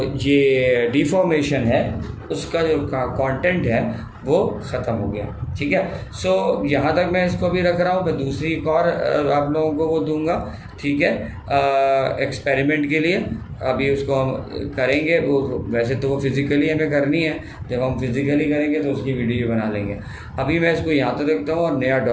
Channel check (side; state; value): both; identical; correlation 1.00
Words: ये डिफॉर्मेशन है उसका जो कंटेंट है वो ख़त्म हो गया। ठीक है, सो यहाँ तक मैं इसको भी रख रहा हूँ। मैं दूसरी एक और आप लोगों को वो दूंगा, ठीक है, एक्सपेरिमेंट के लिए। अभी उसको हम करेंगे, वो वैसे तो वो फिज़िकली हमें करनी है, जब हम फिज़िकली करेंगे तो उसकी वीडियो बना लेंगे। अभी मैं इसको यहाँ तक देखता हूँ और नया